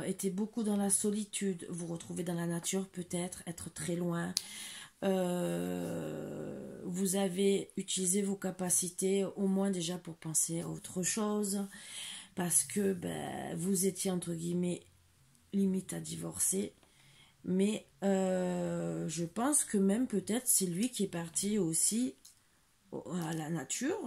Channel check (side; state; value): both; identical; correlation 1.00